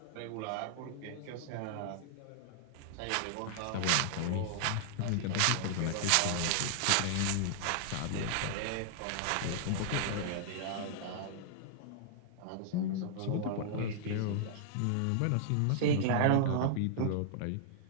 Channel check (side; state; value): both; different; correlation -0.01